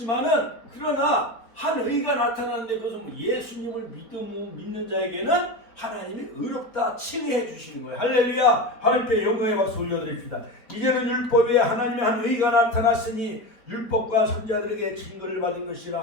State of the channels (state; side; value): late; right; 4.6 ms